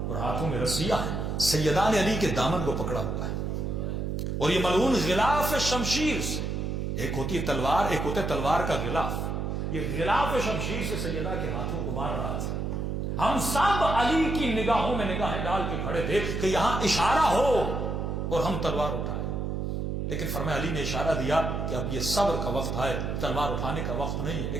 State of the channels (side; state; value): right; noise; hum, 2 dB below the sound